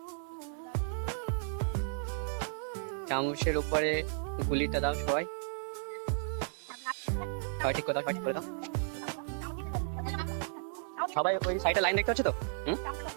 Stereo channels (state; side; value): silent; left; digital silence